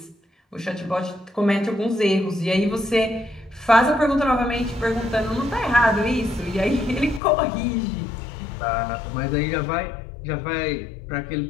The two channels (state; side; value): drops out; right; at 7.2 s